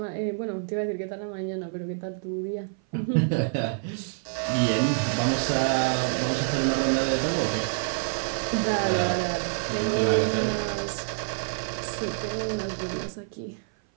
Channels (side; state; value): left; silent; 56 dB below the other